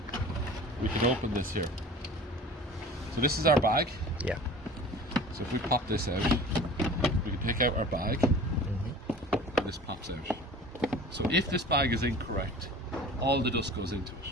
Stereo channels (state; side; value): normal; both; correlation 0.41